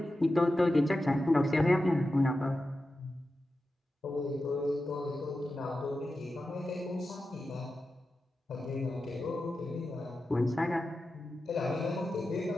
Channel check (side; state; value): both; normal; correlation 0.92